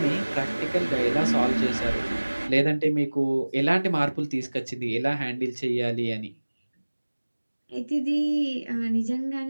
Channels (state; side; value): inverted; both; correlation -1.00